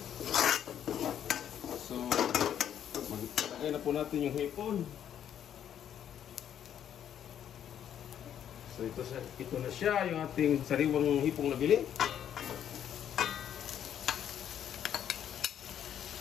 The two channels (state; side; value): quieter; right; 9.7 dB